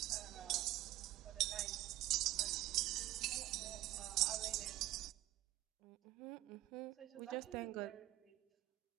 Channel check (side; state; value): left; quieter; 15.2 dB